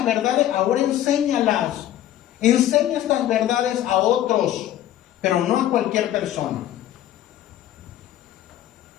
verdades, ahora enséñalas. Enseña estas verdades a otros, pero no a cualquier persona.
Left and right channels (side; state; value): right; quieter; 12.6 dB